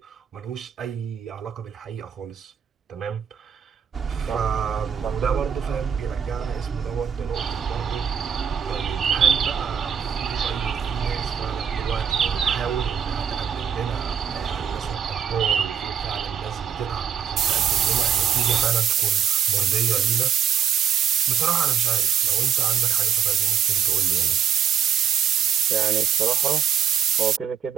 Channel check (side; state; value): left; quieter; 8.4 dB